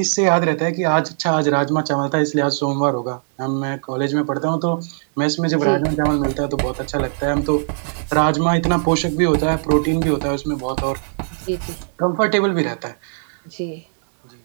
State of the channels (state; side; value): silent; left; 66 dB below the other